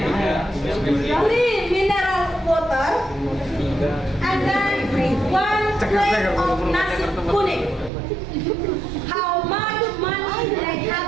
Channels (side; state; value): left; drops out; at 7.9 s